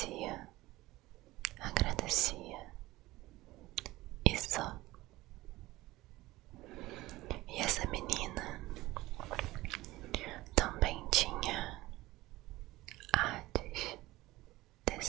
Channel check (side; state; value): left; quieter; 18.5 dB